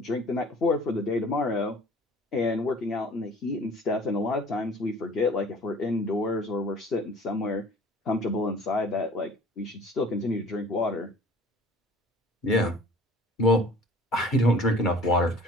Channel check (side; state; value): both; normal; correlation 0.48